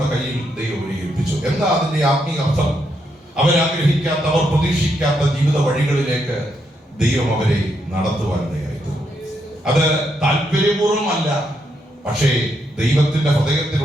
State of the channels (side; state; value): both; normal; correlation 0.79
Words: കയ്യിൽ ദൈവം ഏൽപ്പിച്ചു. എന്താ അതിന്റെ ആത്മീയ അർത്ഥം? അവരാഗ്രഹിക്കാത്ത, അവർ പ്രതീക്ഷിക്കാത്ത ജീവിത വഴികളിലേക്ക് ദൈവം അവരെ നടത്തുവാനിടയായിരുന്നു. അത് താല്പര്യപൂർവ്വമല്ല, പക്ഷേ ദൈവത്തിന്റെ